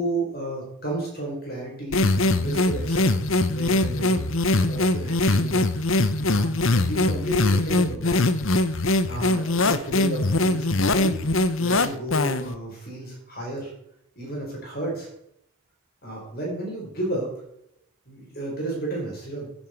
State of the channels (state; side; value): normal; both; correlation 0.43